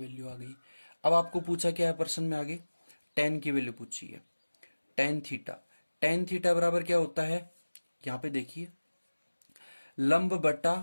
आ गई। अब आपको पूछा क्या है प्रश्न में आगे, टेन की वैल्यू पूछी है। टेन थीटा बराबर क्या होता है, यहां पे देखिए लंब बटा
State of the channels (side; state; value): both; inverted; correlation -1.00